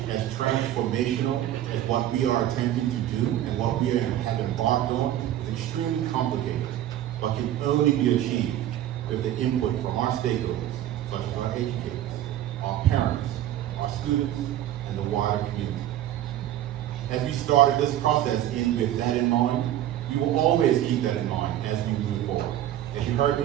as transformational as what we are attempting to do and what we have embarked on is extremely complicated, but can only be achieved with the input from our stakeholders, such as our educators, our parents, our students, and the wider community. As we started this process with that in mind, we will always keep that in mind as we move forward. As you heard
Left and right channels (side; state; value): left; quieter; 12.4 dB